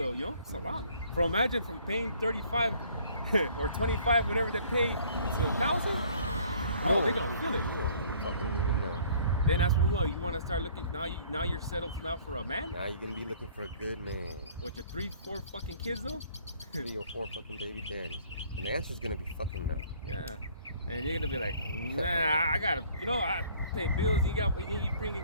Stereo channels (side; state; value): both; inverted; correlation -0.56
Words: you know. It's a lot. Imagine from paying 35 or 25, whatever they pay, to 1,000. Oh, they're gonna feel it. You don't fucking even know. Then that's when what you want to start looking. Now you're settled now for a man. Now you're gonna be looking for a good man. With your 3, 4 fucking kids though. 3 or 4 fucking baby daddies. And the answer's gonna be fucking no. Yeah. And you're gonna be like, nah, I gotta, you know, I pay bills. You